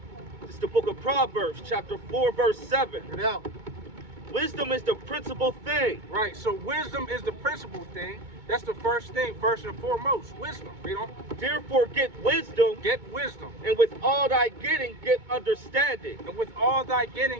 It's the book of Proverbs, chapter 4, verse 7. Get out. Wisdom is the principal thing. Right, so wisdom is the principal thing. That's the first thing, first and foremost. Wisdom. Read on. Therefore get wisdom, Get wisdom. and with all thy getting, get understanding. And with all thy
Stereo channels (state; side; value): late; left; 2.2 ms